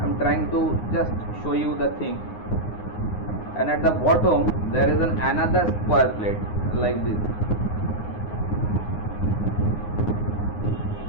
am trying to just show you the thing. And at the bottom there is another square plate like this.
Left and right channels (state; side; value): late; right; 9.6 ms